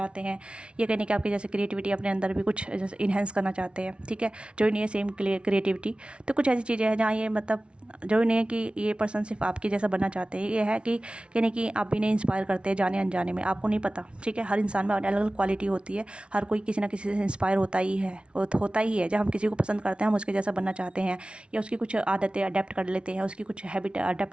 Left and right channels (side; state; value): left; late; 0.058 ms